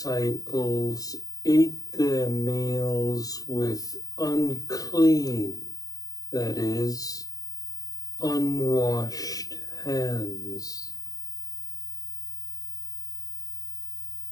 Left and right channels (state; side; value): late; right; 0.18 ms